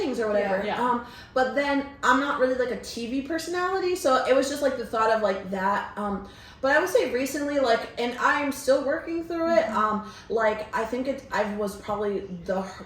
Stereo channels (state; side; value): identical; both; correlation 1.00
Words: or whatever. But then I'm not really like a TV personality, so it was just like the thought of like that. But I would say recently, like, and I'm still working through it. Like I think I was probably the